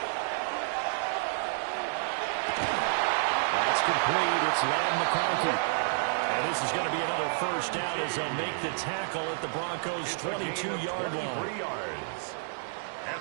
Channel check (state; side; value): silent; left; digital silence